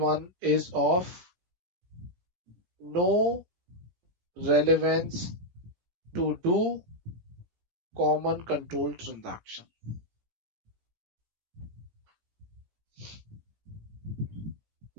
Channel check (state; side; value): late; left; 17 ms